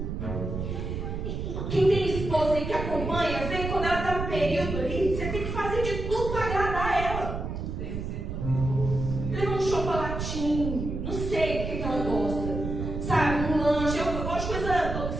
Quem tem esposa aí que acompanha, vê quando ela está no período ali, você tem que fazer de tudo para agradar ela. Leva um chocolatinho, não sei o que ela gosta, sabe, um lanche, eu gosto de coisa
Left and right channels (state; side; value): noise; right; rumble, 4 dB below the sound